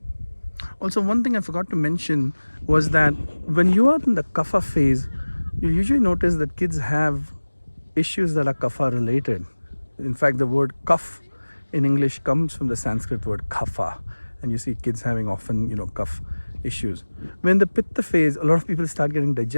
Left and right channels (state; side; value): inverted; both; correlation -1.00